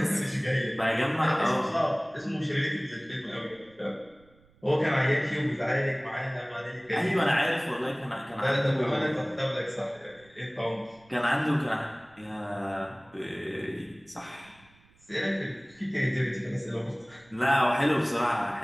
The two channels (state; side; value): noise; right; rumble, 30 dB below the sound